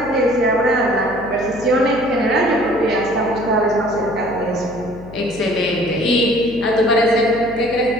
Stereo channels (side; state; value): left; noise; hum, 16 dB below the sound